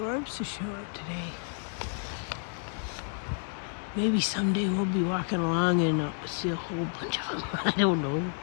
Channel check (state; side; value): silent; right; 58 dB below the other